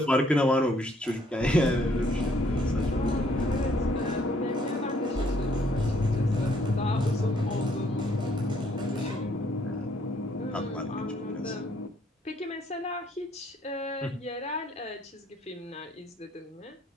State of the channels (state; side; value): normal; both; correlation 0.66